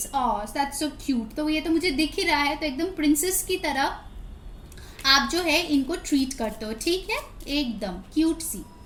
that's so cute. तो ये तो मुझे दिख ही रहा है, तो एकदम प्रिंसेस की तरह आप जो है इनको ट्रीट करते हो, ठीक है, एकदम क्यूट सी।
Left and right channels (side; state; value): both; identical; correlation 1.00